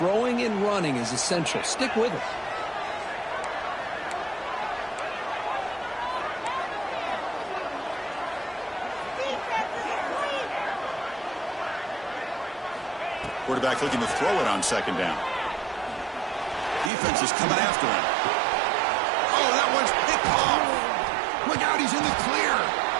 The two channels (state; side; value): drops out; left; at 16.9 s